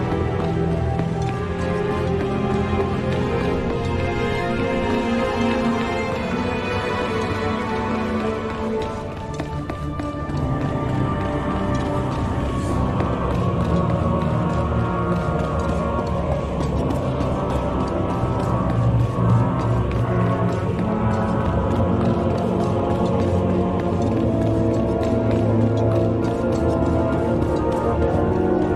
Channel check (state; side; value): identical; both; correlation 1.00